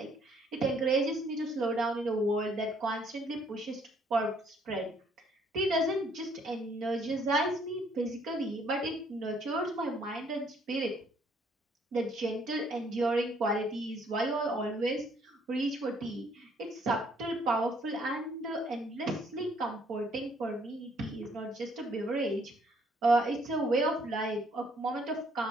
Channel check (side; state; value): both; normal; correlation 0.65